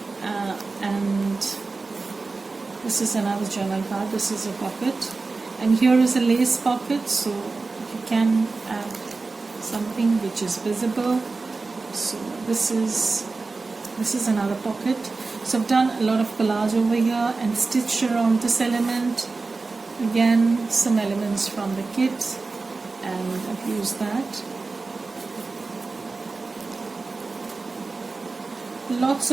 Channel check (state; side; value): quieter; left; 3.8 dB